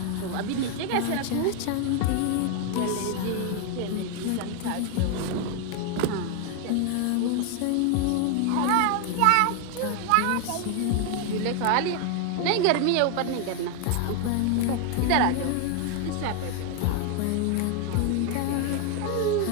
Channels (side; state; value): both; different; correlation 0.00